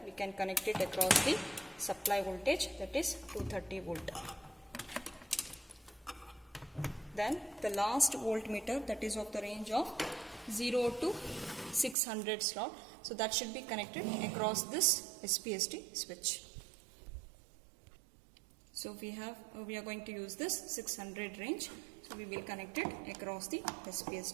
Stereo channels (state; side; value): drops out; left; at 12.0 s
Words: we can connect it across the supply voltage, that is 230 volt. Then the last voltmeter, that is of the range of 0 to 600 slot. So that should be connected across this SPST switch. So we are going to use this 600 range. So we will connect it across the